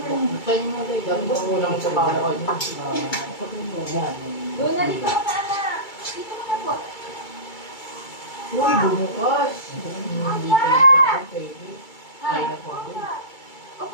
Saan mo kayo? Dami ko kulang sa PowerPoint mo. Doon na dito ako sa anak. Dito ka na po. Uy, bumukas! Hindi ko lang sa pwede. Ay, na po.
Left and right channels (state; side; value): late; right; 2.3 ms